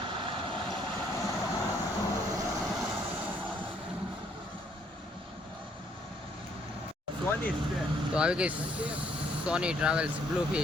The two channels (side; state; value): both; normal; correlation 0.67